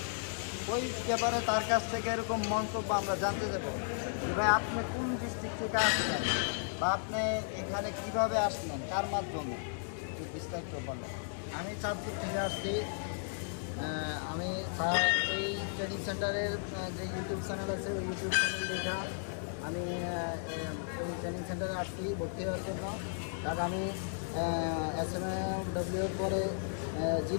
ওই ব্যাপারে তার কাছ থেকে এরকম মন্তব্য আমরা জানতে দেবো। ভাই, আপনি কোন ডিস্ট্রিক্ট থেকে আসলেন বা আপনি এখানে কিভাবে আসলেন, কার মাধ্যমে, একটু বিস্তারিত বলেন। আমি চাঁদপুর থেকে আসছি। আমি এই ট্রেনিং সেন্টারের যে ইউটিউব চ্যানেল আছে ওই ইউটিউব চ্যানেল দেখা আমি এই ট্রেনিং সেন্টারে আসছি ভর্তি হওয়ার জন্য। কারণ আমি SMAW পরে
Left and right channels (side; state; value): right; silent; digital silence